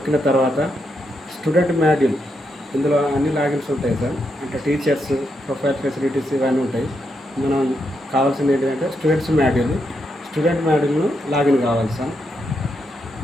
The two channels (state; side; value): normal; both; correlation 0.82